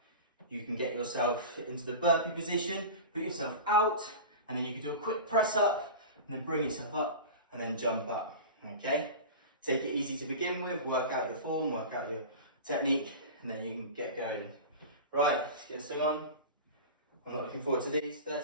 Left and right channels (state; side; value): inverted; both; correlation -0.31